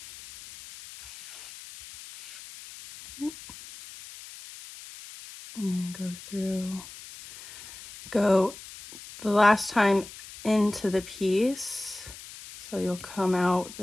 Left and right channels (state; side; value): noise; left; hiss, 15 dB below the sound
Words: And go through, go the last time into the piece. So you'll come out